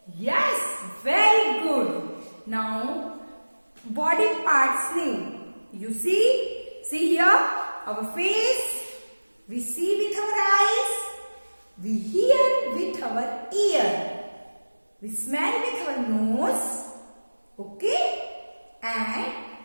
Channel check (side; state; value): both; inverted; correlation -1.00